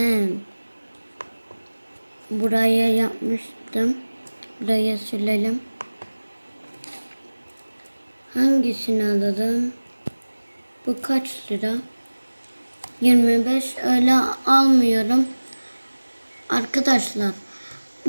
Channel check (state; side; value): inverted; both; correlation -1.00